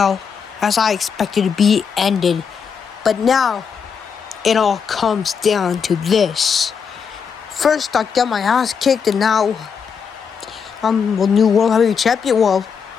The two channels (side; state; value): right; quieter; 6.5 dB